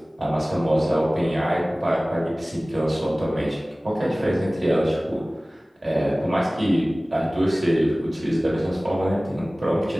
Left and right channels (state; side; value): normal; both; correlation 0.98